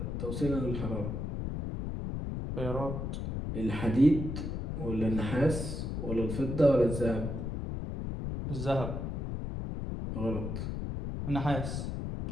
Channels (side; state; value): left; noise; rumble, 3 dB below the sound